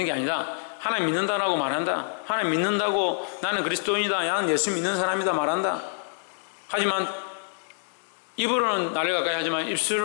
게 아니라 하나님 믿는다라고 말한다. 하나님 믿는다고 나는 그리스도인이다, 나는 예수 믿는 사람이다 말한다. 하지만 입으로는 나를 가까이 하지만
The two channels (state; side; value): silent; right; 61 dB below the other